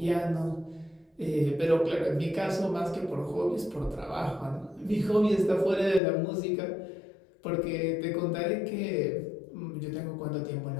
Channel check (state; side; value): drops out; right; at 6.0 s